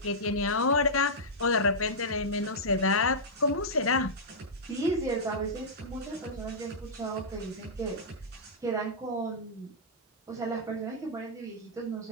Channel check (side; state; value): both; normal; correlation -0.11